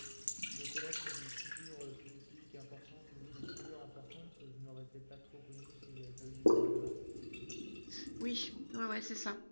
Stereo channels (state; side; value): inverted; both; correlation -1.00